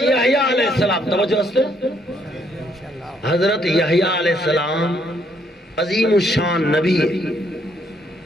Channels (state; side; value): normal; both; correlation 0.70